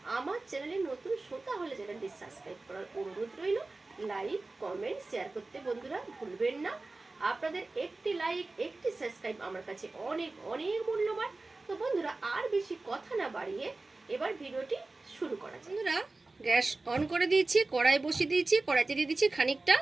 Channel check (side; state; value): left; quieter; 3.3 dB